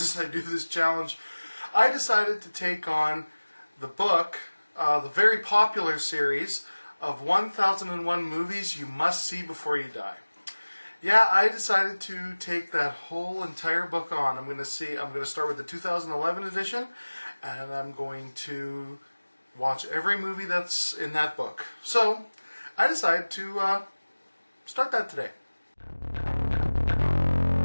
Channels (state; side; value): inverted; both; correlation -1.00